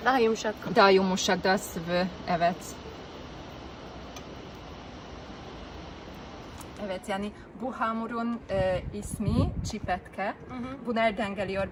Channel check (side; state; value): both; identical; correlation 1.00